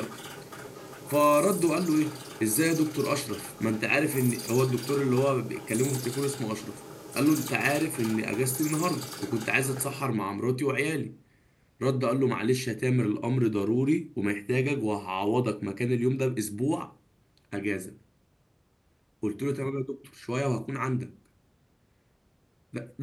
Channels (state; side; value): identical; both; correlation 1.00